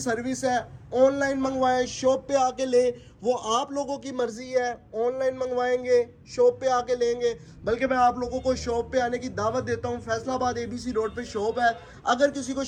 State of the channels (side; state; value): both; identical; correlation 1.00